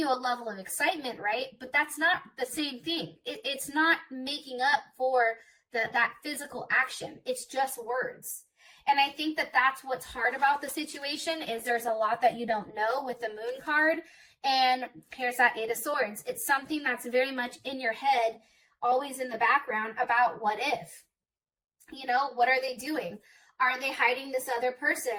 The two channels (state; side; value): identical; both; correlation 1.00